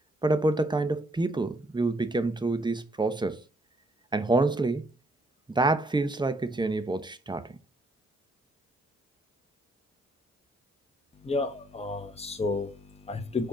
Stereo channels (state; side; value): normal; both; correlation 0.70